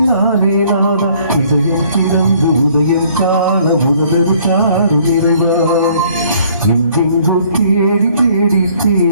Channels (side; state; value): both; inverted; correlation -0.60